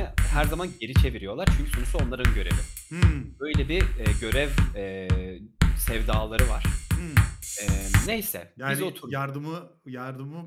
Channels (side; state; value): both; identical; correlation 1.00